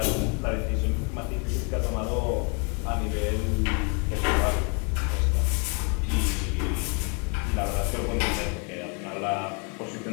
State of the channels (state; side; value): quieter; right; 35.9 dB